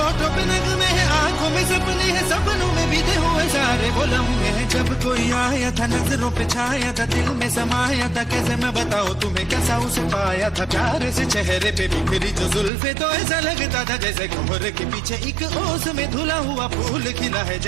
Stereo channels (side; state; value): left; drops out; at 12.7 s